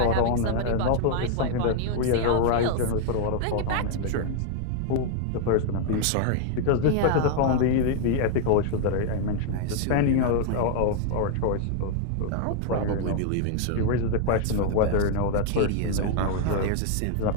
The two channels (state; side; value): different; both; correlation 0.00